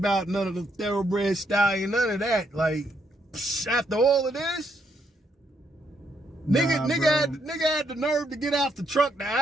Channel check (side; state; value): both; normal; correlation 0.76